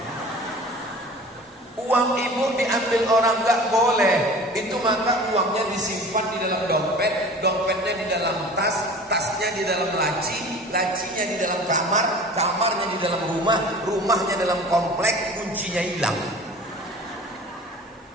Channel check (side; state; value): both; normal; correlation 0.41